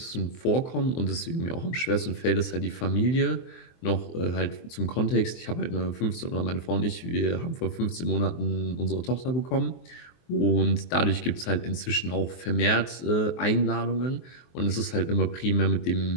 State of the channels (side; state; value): right; late; 23 ms